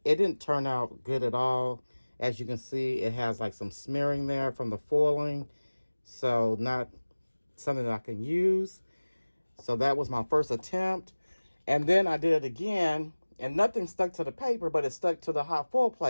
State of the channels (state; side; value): inverted; both; correlation -1.00